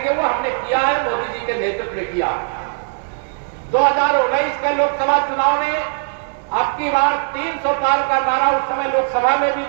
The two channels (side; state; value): left; silent; digital silence